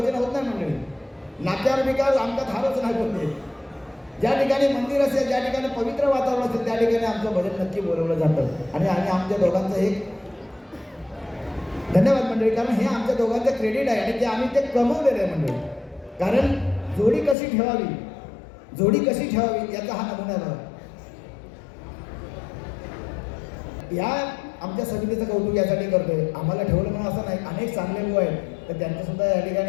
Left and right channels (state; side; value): drops out; right; at 17.4 s